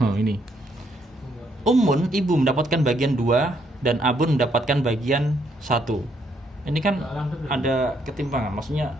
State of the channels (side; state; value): both; normal; correlation 0.72